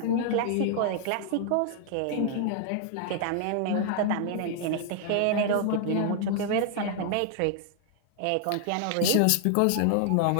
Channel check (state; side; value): different; both; correlation 0.00